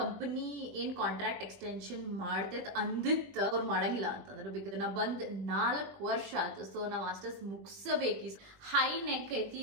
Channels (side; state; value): left; late; 20 ms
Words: Company ಏನ್ contract extension ಮಾಡ್ತೈತ್ ಅಂದಿತ್ತ ಅವ್ರು ಮಾಡಂಗಿಲ್ಲ ಅಂತಂದ್ರೆ ಬಿಕಾಸ್ ನಾ ಬಂದ್ 4 ವರ್ಷ ಆಯ್ತು. ಸೊ ನಾ ಮಾಸ್ಟರ್ಸ್ ಮುಗಿಸಬೇಕಿ. ಹೈ ನೆಕ್ ಐತಿ,